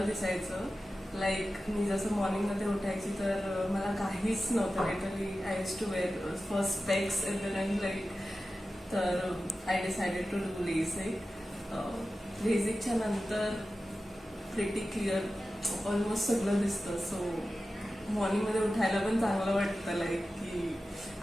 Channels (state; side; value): normal; both; correlation 0.94